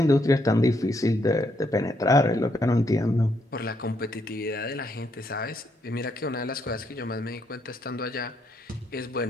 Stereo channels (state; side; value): normal; both; correlation 0.75